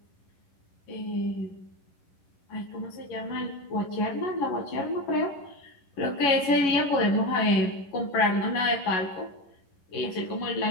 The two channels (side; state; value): right; late; 11 ms